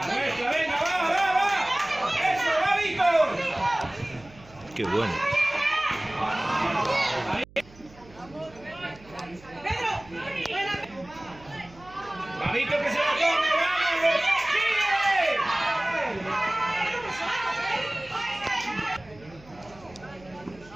nuestra! ¡Venga, va! ¡Eso, va, Víctor! Qué bueno. Pedro. Buena. ¡Va, Víctor, que se la come! ¡Vamos! ¡Sigue!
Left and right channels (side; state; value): right; noise; hum, 23 dB below the sound